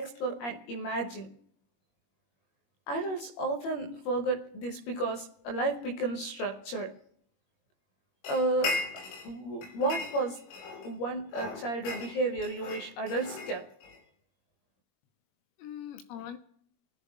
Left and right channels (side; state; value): right; late; 21 ms